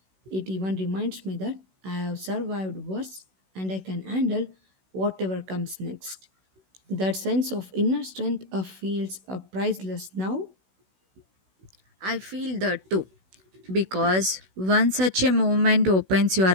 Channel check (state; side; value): late; left; 16 ms